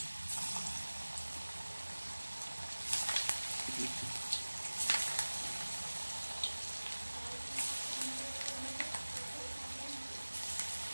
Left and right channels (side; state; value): both; inverted; correlation -1.00